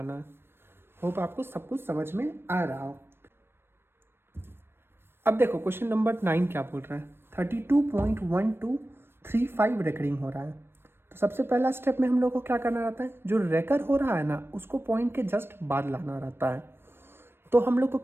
है। होप आपको सब कुछ समझ में आ रहा हो। अब देखो क्वेश्चन नंबर 9 क्या बोल रहा है, 32.1235 रेकरिंग हो रहा है। तो सबसे पहला स्टेप में हम लोग को क्या करना रहता है, जो रेकर हो रहा है ना उसको पॉइंट के जस्ट बाद लाना रहता है। तो हम लोग को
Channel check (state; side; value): late; left; 0.11 ms